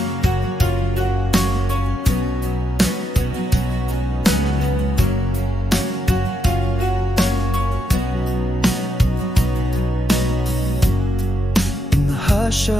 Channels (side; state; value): both; normal; correlation 0.81